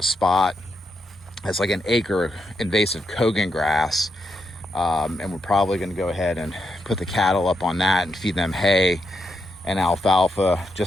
spot that's like an acre invasive Kogan grass. And we're probably going to go ahead and put the cattle up on that and feed them hay and alfalfa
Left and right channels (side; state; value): both; normal; correlation 0.82